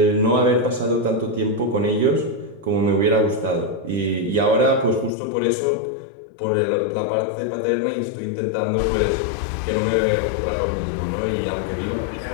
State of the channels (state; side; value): drops out; right; at 5.1 s